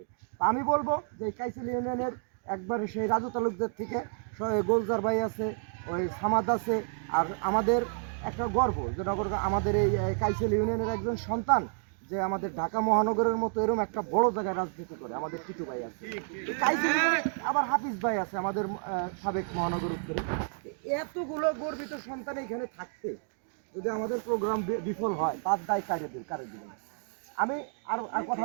আমি বলবো যে কাইসেল ইউনিয়নের একবারে সেই রাজু তালুকদের থেকে গোলজার ভাই আছে, ওই সামাদ আছে, আর আমাদের একটা গর্ব যে আমাদের এই কাইসেল ইউনিয়নের একজন সন্তান যে আমাদের ঢাকা মহানগরের মতো এরকম একটা বড় জায়গায় রাজনীতি করে, আমাদের টিটু ভাই আছে। কাইসেল আবার হাফিজ ভাই আছে আমাদের সাবেক মহানগর উত্তরে। এতগুলো গর্বিত সন্তান এখানে থাকতে যদি আমাদের প্রোগ্রাম বিফল হয়, তার দায় কারে দিবেন। আমি আর কথা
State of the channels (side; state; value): left; silent; 58 dB below the other